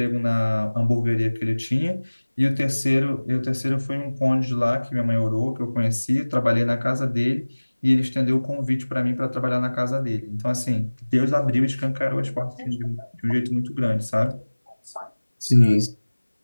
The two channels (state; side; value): inverted; both; correlation -1.00